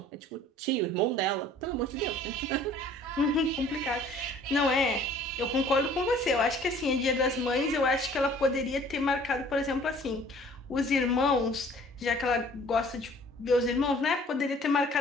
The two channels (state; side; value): normal; both; correlation 0.53